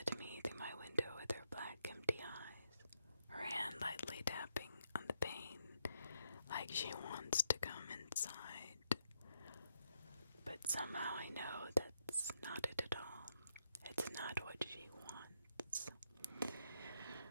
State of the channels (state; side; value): inverted; both; correlation -0.80